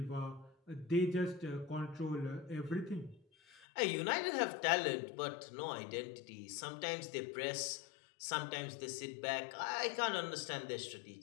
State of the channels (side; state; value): right; drops out; at 3.7 s